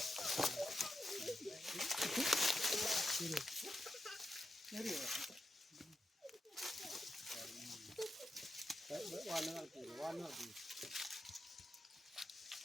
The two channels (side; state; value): both; normal; correlation 0.87